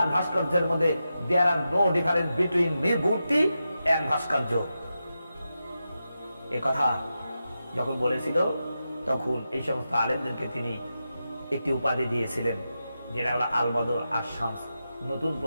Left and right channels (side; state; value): both; inverted; correlation -0.90